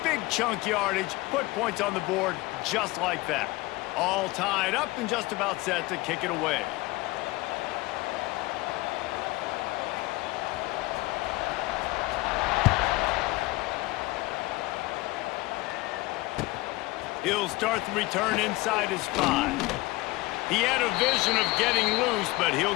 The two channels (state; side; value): quieter; right; 20.9 dB